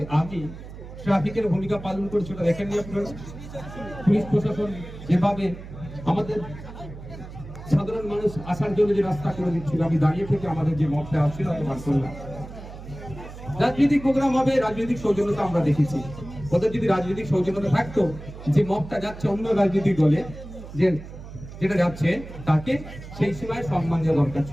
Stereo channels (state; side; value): noise; right; hum, 13 dB below the sound